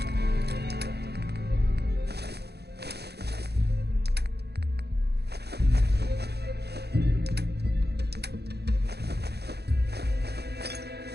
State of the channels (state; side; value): late; left; 0.48 ms